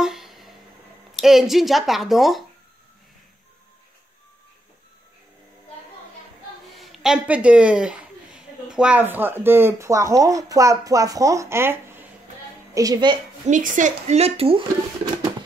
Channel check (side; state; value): both; normal; correlation 0.80